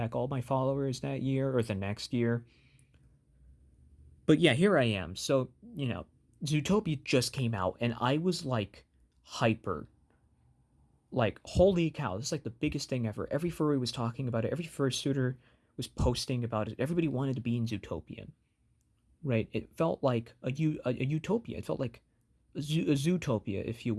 all my followers that year or the next year. But yeah, here I am. So Zootopia just came out, and I was like hyper. Like, holy cow, this is like the biggest thing ever. Every furry was talking about it. Every fursuiter was posting about it. Everybody wanted to be in Zootopia, right? It felt like a utopia. It felt like a zootopia, if you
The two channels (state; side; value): identical; both; correlation 1.00